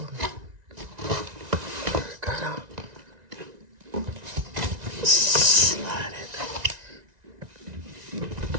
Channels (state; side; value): late; left; 1.9 ms